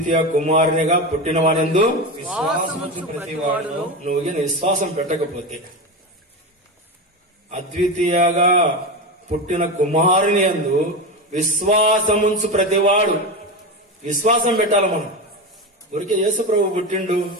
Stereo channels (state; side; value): normal; both; correlation 0.20